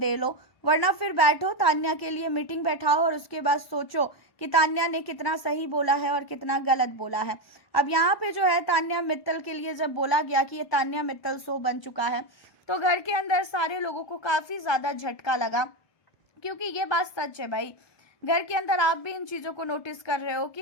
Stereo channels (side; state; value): right; late; 1.0 ms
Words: लो, वरना फिर बैठो तान्या के लिए मीटिंग बैठाओ और उसके बाद सोचो कि तान्या ने कितना सही बोला है और कितना गलत बोला है। अब यहाँ पे जो है तान्या मित्तल के लिए जब बोला गया कि ये तान्या मित्तल शो बन चुका है, तो घर के अंदर सारे लोगों को काफ़ी ज़्यादा झटका लगा, क्योंकि ये बात सच है भाई। घर के अंदर आप भी इन चीज़ों को नोटिस कर रहे हो कि